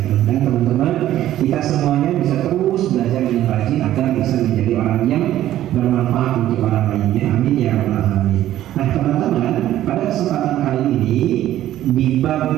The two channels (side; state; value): left; quieter; 13.0 dB